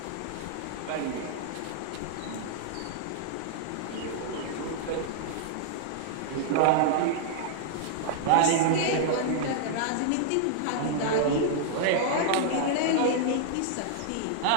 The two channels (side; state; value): both; different; correlation -0.01